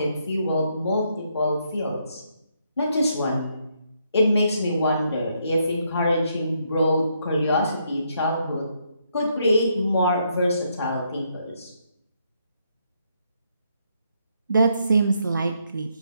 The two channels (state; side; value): inverted; both; correlation -0.75